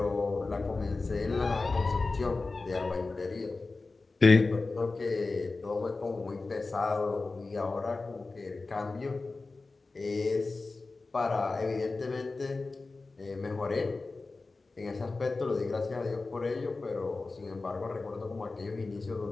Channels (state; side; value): quieter; right; 3.6 dB